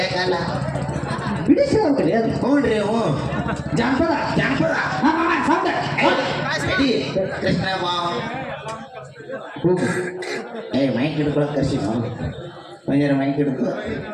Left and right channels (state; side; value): identical; both; correlation 1.00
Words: ಕಾಲ ಬಿಡಿಸಿ ಹೋಗ್ತದೆ ಅದು ಹ್ಞೂನ್ರಿ ಹ್ಞೂ ಜಾನಪದ ಜಾನಪದ ರೆಡಿ ಕೃಷ್ಣ ಬಾವ್ ಮೈಕ್ ಹಿಡ್ಕೊಳಕ್ ಕರ್ಸಿ ನಾವು ಒಂಜಾರ ಮೈಕ್ ಹಿಡ್ಕೊ